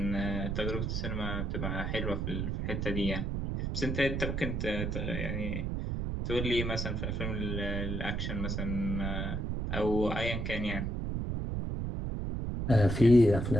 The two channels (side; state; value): right; noise; rumble, 1 dB below the sound